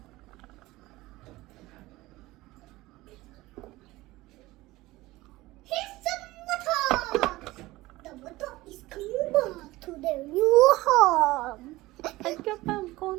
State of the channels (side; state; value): left; quieter; 19.0 dB